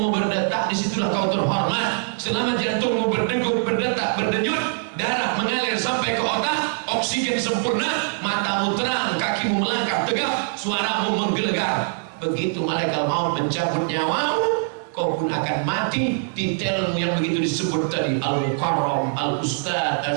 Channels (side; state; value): left; silent; digital silence